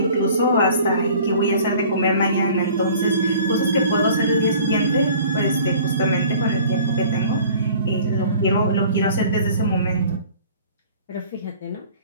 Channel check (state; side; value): inverted; both; correlation -0.49